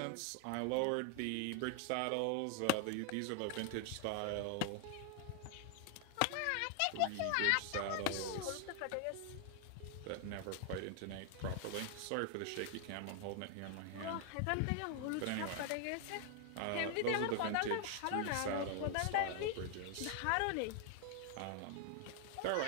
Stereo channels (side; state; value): both; different; correlation 0.00